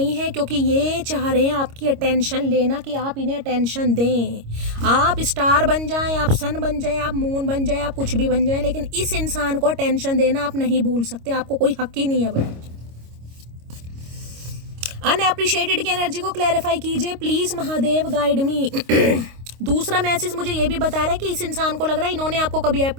है, क्योंकि ये चाह रहे हैं आपकी अटेंशन लेना, कि आप इन्हें अटेंशन दें। आप स्टार बन जाएं, आप सन बन जाएं, आप मून बन जाएं, आप कुछ भी बन जाएं, लेकिन इस इंसान को अटेंशन देना आप नहीं भूल सकते। आपको कोई हक ही नहीं है भाई। अनएप्रिशिएटेड की एनर्जी को क्लैरिफाई कीजिए प्लीज महादेव, गाइड मी। दूसरा मैसेज मुझे ये भी बता रहा है कि इस इंसान को लग रहा है इन्होंने आपको कभी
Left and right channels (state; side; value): late; left; 26 ms